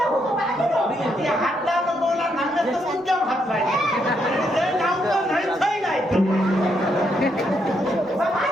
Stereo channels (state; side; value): normal; both; correlation 0.77